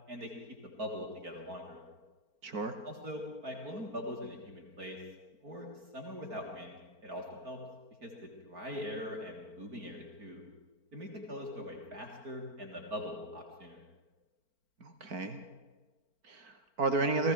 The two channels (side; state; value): left; late; 4.4 ms